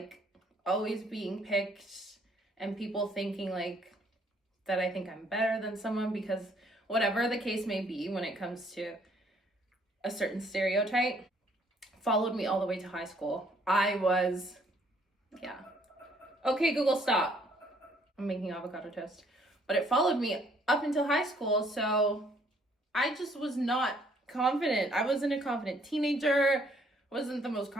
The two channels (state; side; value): normal; both; correlation 0.64